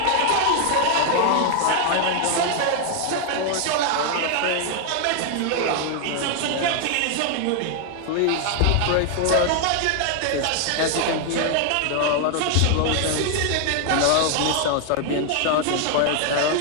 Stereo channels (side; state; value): both; different; correlation 0.00